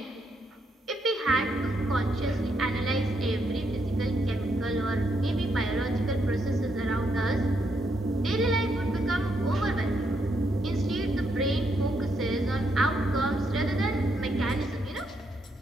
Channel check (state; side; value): normal; both; correlation 0.77